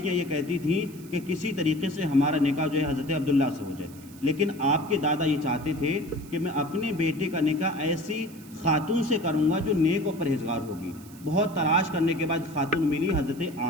یہ کہتی تھیں کہ کسی طریقے سے ہمارا نکاح جو ہے حضرت عبداللہ سے ہو جائے، لیکن آپ کے دادا یہ چاہتے تھے کہ میں اپنے بیٹے کا نکاح ایسی خاتون سے کروں گا جو نیک و پرہیزگار ہوگی۔ بہت تلاش کرنے کے بعد خاتون ملی حضرت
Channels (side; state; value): right; noise; hiss, 22 dB below the sound